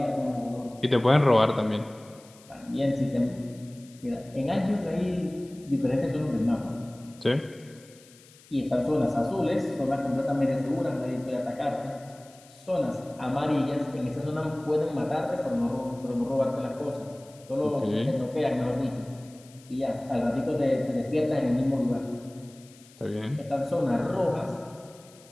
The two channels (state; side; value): noise; left; hiss, 25 dB below the sound